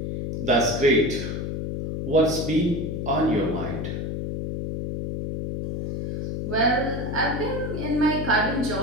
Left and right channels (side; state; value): left; noise; hum, 4 dB below the sound